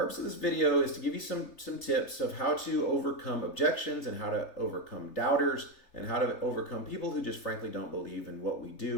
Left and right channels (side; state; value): right; late; 3.3 ms